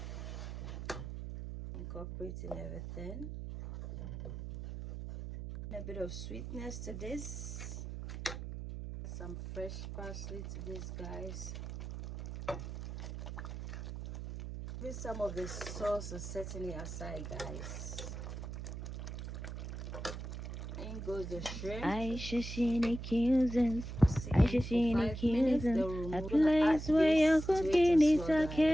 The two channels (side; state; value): right; noise; hum, 7 dB below the sound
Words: incorporating everything. A bit of sweetness to this, some fresh parsley to this, guys. With some of the sauce is certainly aside, guys. In goes the shrimp. Ayesha seen accusers. Ayesha seen accusers. A place where your cooking is